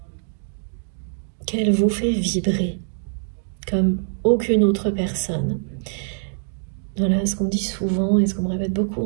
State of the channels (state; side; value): silent; left; digital silence